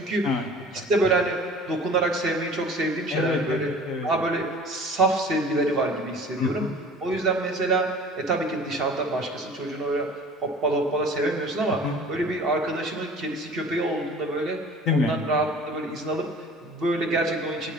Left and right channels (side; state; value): both; normal; correlation 0.44